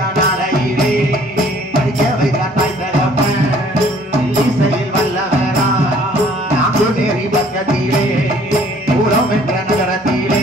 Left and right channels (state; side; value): normal; both; correlation 0.57